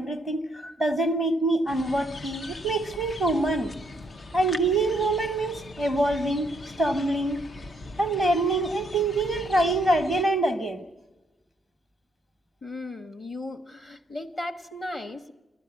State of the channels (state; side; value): normal; both; correlation 0.71